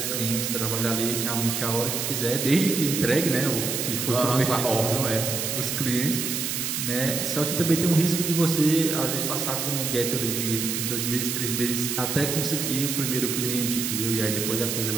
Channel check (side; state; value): right; noise; hiss, 2 dB below the sound